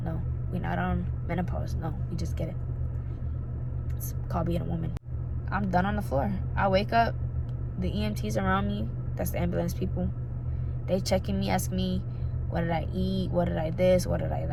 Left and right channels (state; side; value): identical; both; correlation 1.00